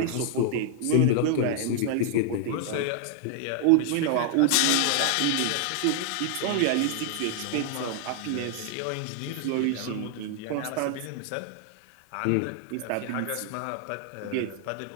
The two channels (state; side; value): different; both; correlation 0.00